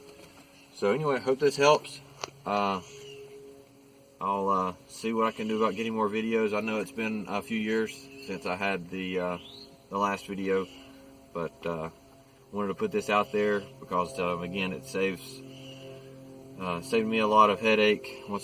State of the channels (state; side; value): identical; both; correlation 1.00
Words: So anyway, I hope this helps. I'll see what I can do about getting more videos. I know it's been a few years since I had the last video, but wanted to put this out there because again, it saved me a lot of headache